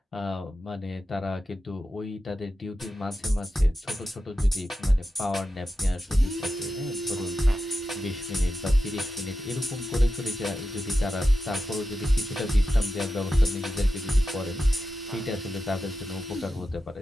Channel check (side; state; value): both; normal; correlation 0.91